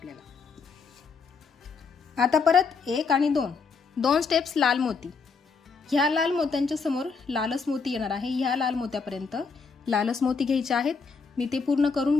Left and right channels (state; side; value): quieter; right; 5.0 dB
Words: आता परत 1 आणि 2 स्टेप्स लाल मोती. ह्या लाल मोत्यांच्या समोर लालच मोती येणार आहे. ह्या लाल मोत्यापर्यंत लालच मोती घ्यायचे आहेत. मी ते पूर्ण करून